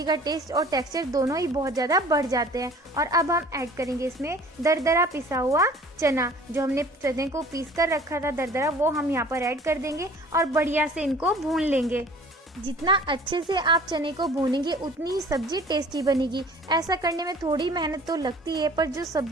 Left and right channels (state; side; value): normal; both; correlation 0.49